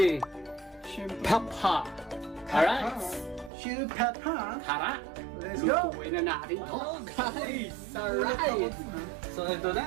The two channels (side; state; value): left; drops out; at 3.5 s